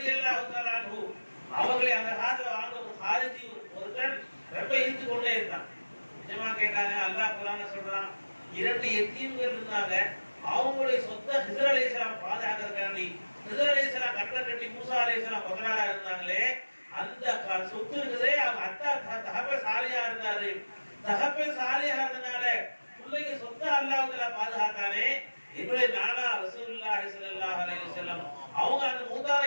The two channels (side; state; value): both; inverted; correlation -1.00